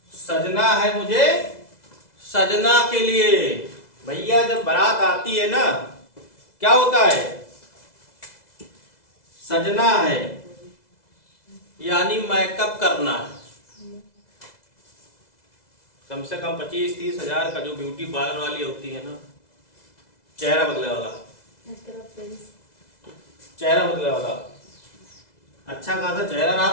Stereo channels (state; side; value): late; right; 2.0 ms